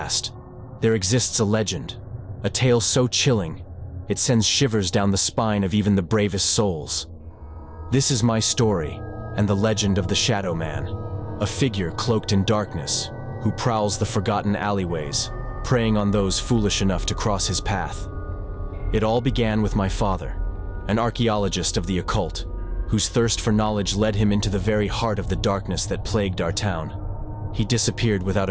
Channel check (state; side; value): identical; both; correlation 1.00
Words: there exists a legend, a tale so chilling, it sends shivers down the spine of even the bravest souls. This is my story, and the legend of the Shadow Man, a figure cloaked in darkness, who prowls the forgotten alleyways, preying on those foolish enough to cross his path. It all began with my father, an archaeologist of the occult, whose thirst for knowledge led him into the very heart of the darkness that plagued our town. He disappeared without